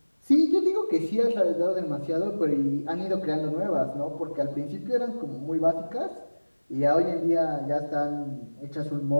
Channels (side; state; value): both; inverted; correlation -1.00